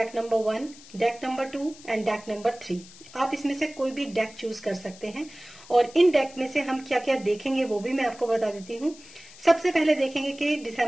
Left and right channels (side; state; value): left; noise; hiss, 20 dB below the sound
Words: number 1, deck number 2 and deck number 3। आप इसमें से कोई भी डेक चूज कर सकते हैं। और इन डेक में से हम क्या क्या देखेंगे वो भी मैं आपको बता देती हूँ। सबसे पहले देखेंगे कि